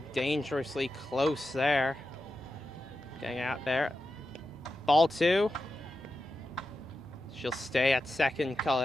dangerously close there. Getting out there. Ball 2. She'll stay at second,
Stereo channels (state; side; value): normal; both; correlation 0.90